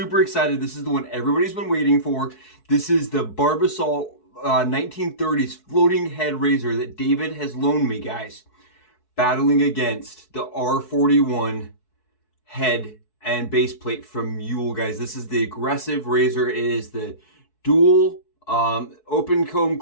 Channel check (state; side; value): late; right; 4.6 ms